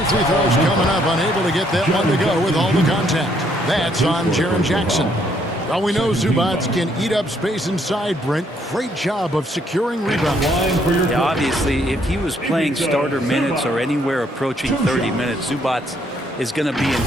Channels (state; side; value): normal; both; correlation 0.69